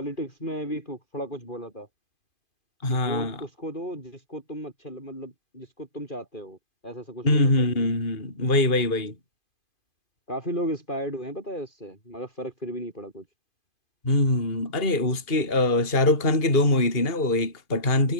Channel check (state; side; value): late; right; 2.5 ms